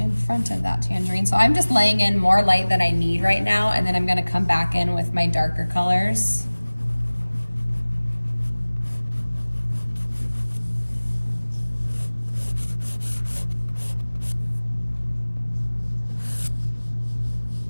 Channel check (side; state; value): both; inverted; correlation -1.00